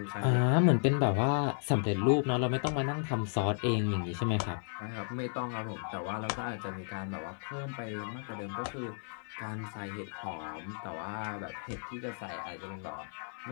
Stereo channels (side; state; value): right; silent; 55 dB below the other